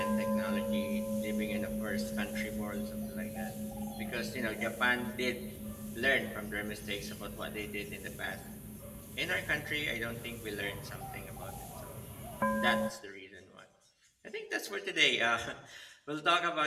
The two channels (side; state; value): both; identical; correlation 1.00